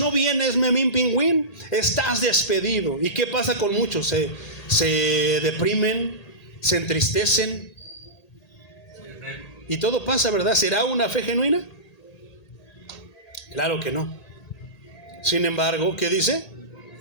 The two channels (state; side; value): late; right; 1.8 ms